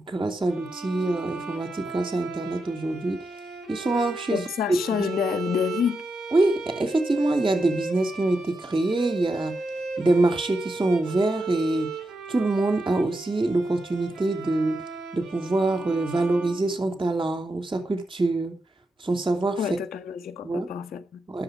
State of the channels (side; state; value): both; normal; correlation 0.86